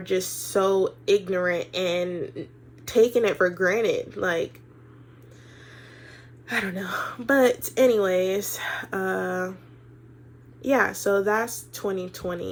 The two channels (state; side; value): identical; both; correlation 1.00